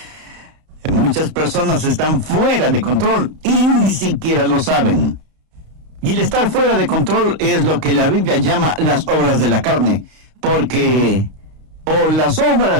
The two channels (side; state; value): left; late; 32 ms